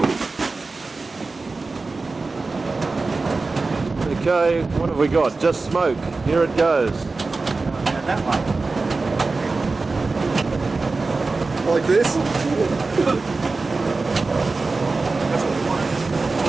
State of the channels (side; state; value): left; quieter; 3.8 dB